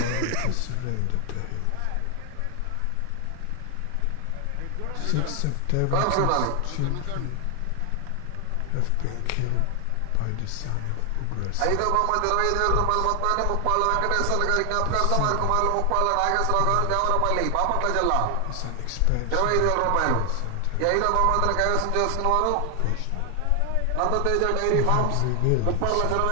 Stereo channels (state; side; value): different; both; correlation 0.00